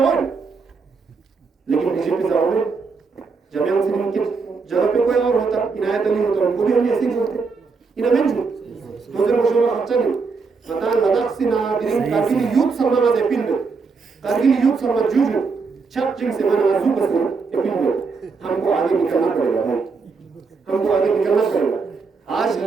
लेकिन बीजेपी जवान में जामियान सिंह के जगह पे कोई और होता इनायत अली होता उनको भी हम ऐसे ही बोलते इन्हें जो दो दिन रोशन में अच्छा नहीं पता लद्दाख से ना दिरिंग कारगिल यूथ सम्मान में अपील में कारगिल यूथ सम्मान जूजू छप चिंग से मन आजू बस अपील में हमको आगे निकलना पड़ेगा भाई, हमको आगे निकलना पड़ेगा। आज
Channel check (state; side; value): quieter; left; 4.8 dB